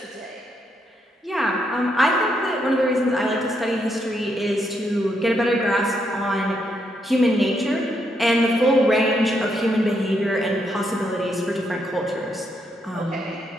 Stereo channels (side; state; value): both; normal; correlation 0.77